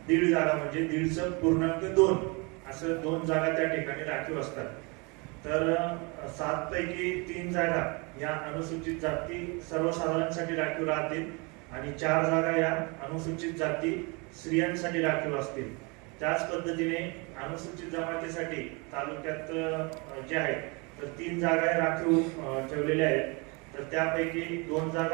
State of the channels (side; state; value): left; quieter; 29.8 dB